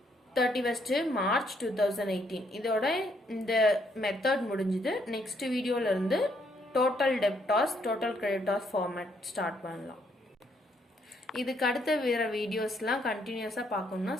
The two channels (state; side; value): normal; both; correlation 0.71